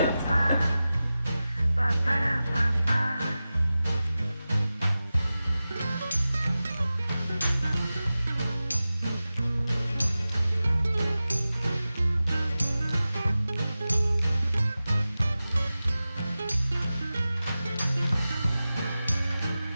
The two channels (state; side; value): inverted; both; correlation -0.95